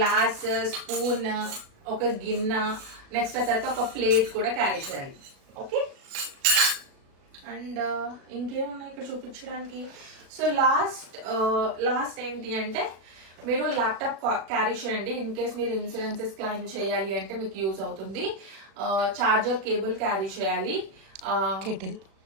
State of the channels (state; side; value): late; left; 36 ms